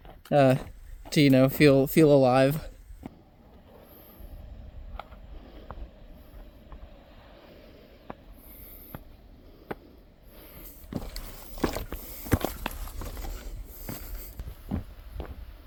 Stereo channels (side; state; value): both; identical; correlation 1.00